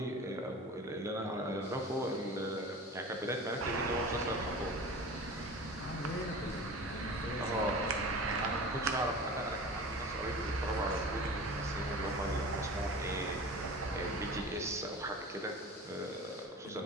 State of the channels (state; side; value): normal; both; correlation 0.36